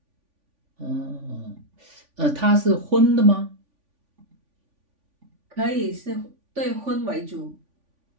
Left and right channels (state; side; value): late; left; 3.5 ms